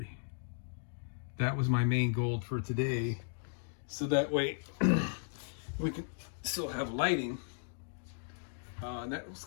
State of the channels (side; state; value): right; silent; digital silence